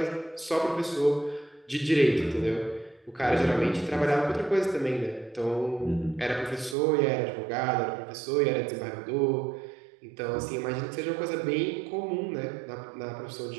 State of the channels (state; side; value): drops out; left; at 6.8 s